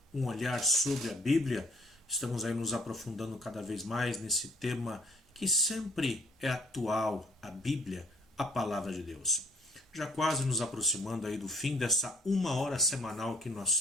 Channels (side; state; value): both; normal; correlation 0.61